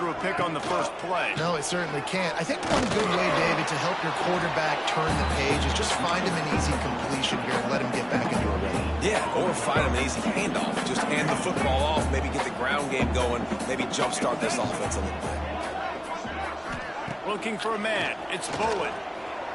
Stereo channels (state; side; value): identical; both; correlation 1.00